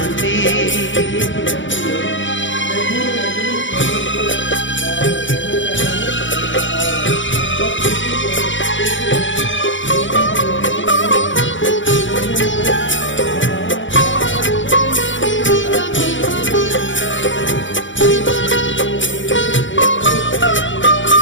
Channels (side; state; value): right; late; 0.55 ms